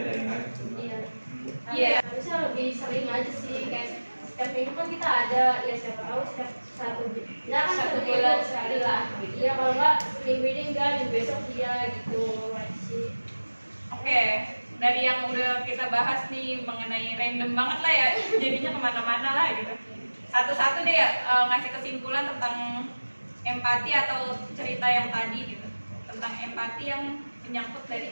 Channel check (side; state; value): both; inverted; correlation -1.00